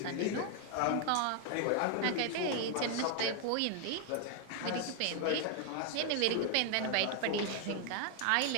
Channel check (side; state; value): both; different; correlation 0.00